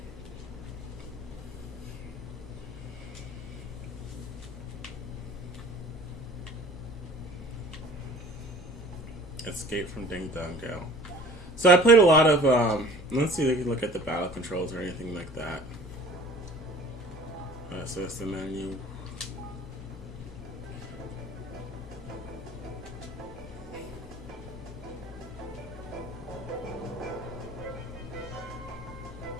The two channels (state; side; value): normal; both; correlation 0.47